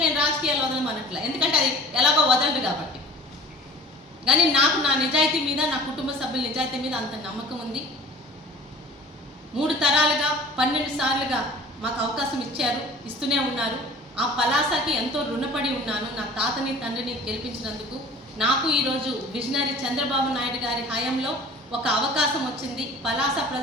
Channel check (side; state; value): both; normal; correlation 0.44